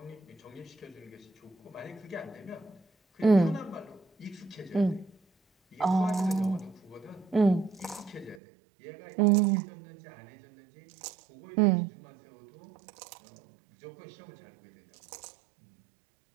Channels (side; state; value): left; drops out; at 8.4 s